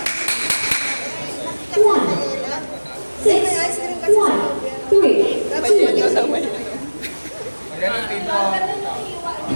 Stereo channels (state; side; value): inverted; both; correlation -1.00